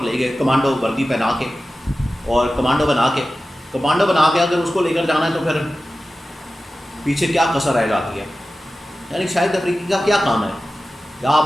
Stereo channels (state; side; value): normal; both; correlation 0.95